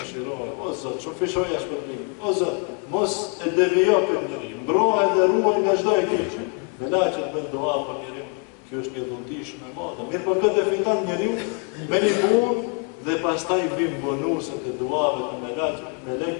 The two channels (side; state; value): right; quieter; 39.1 dB